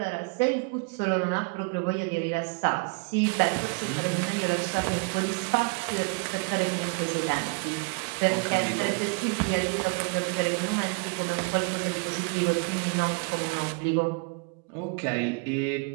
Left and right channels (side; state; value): left; quieter; 33.8 dB